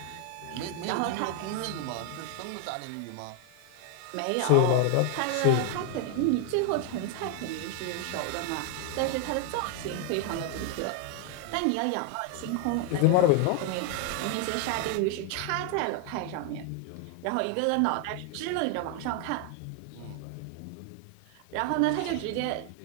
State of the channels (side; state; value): both; different; correlation 0.01